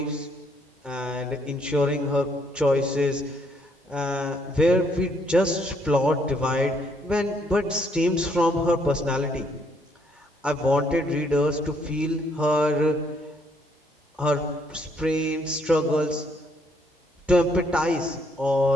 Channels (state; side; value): normal; both; correlation 0.69